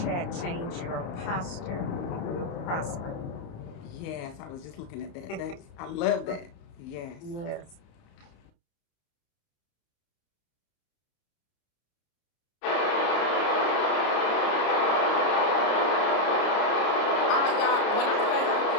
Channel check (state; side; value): late; right; 29 ms